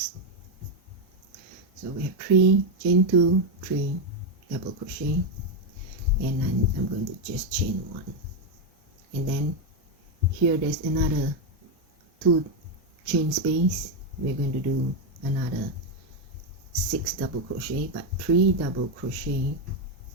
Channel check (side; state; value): both; normal; correlation 0.04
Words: So we have 3 chain 2, 3 double crochet, and then I'm going to just chain 1, and then here there's another 2 chain space. We're going to do another 6 double crochet, but 3 double crochet,